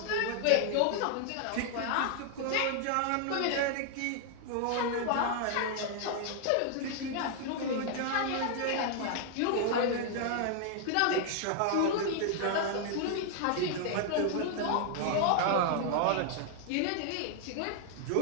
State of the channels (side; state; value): both; different; correlation 0.00